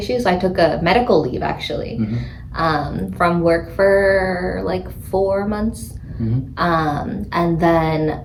I took a medical leave actually, Mhm. from work for like 4 months, Mhm. and then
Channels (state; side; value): identical; both; correlation 1.00